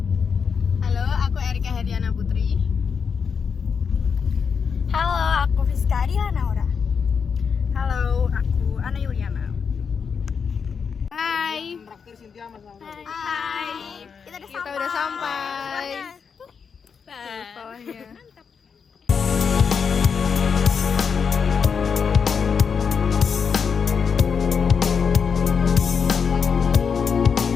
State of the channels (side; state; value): right; quieter; 6.2 dB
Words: Halo, aku Erika Hediana Putri. Halo, aku Fiska Adila Naura. Halo, aku Ana Yuliana. Hai. Hai. Kita udah sampai. Bawahnya.